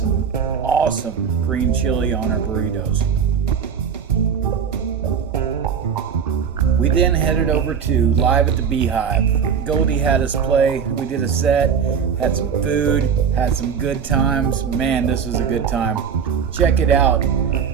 awesome green chili on our burritos. We then headed over to Live at the Beehive. Goldie had us play. We did a set, had some food, had some good times. Man, this was a good time. Check it out.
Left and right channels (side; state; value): left; quieter; 7.0 dB